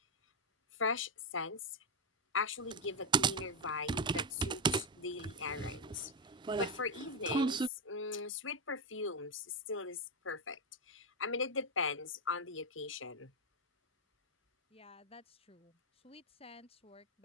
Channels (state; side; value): normal; both; correlation 0.04